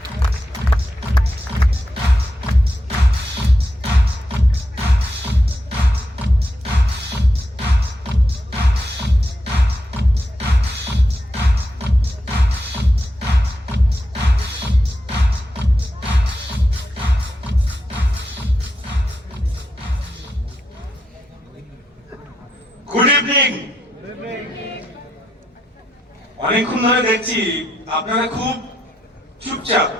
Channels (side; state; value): both; normal; correlation 0.83